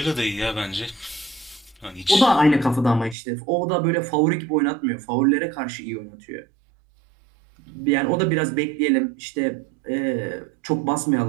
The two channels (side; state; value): left; drops out; at 3.2 s